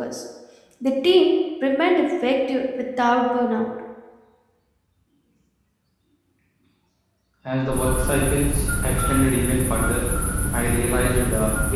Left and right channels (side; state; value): both; identical; correlation 1.00